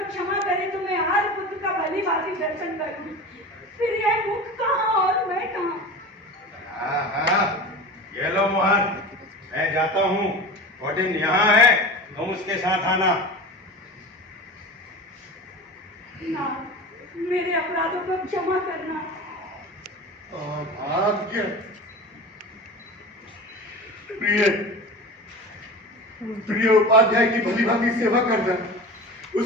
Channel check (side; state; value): both; normal; correlation 0.32